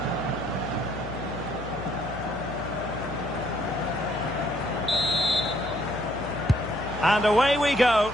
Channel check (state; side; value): noise; left; hum, 12 dB below the sound